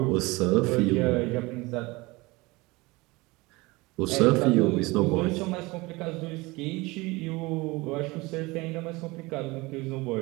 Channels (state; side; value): quieter; left; 23.0 dB